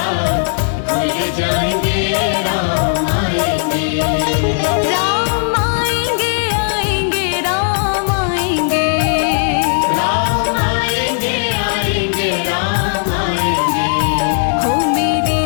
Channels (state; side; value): silent; right; digital silence